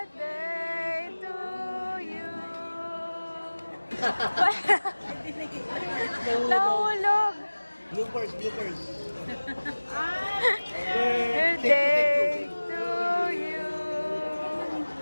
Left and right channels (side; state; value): both; inverted; correlation -1.00